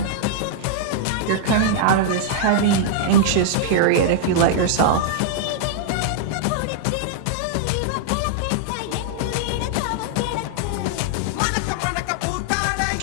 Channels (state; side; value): different; both; correlation -0.01